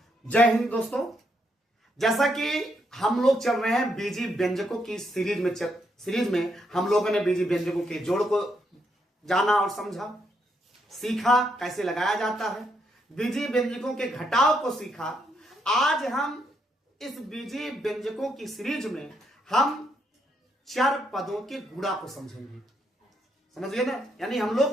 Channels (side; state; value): both; normal; correlation 0.77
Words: जय हिंद दोस्तों। जैसा कि हम लोग चल रहे हैं बीजी व्यंजकों की सीरीज में हम लोगों ने बीजी व्यंजकों के जोड़ को जाना और समझा, सीखा कैसे लगाया जाता है, बीजी व्यंजकों के घटाव को सीखा। आज हम इस बीजी व्यंजकों की सीरीज में हम चर पदों के गुणा को समझेंगे। समझिए ना, यानी हम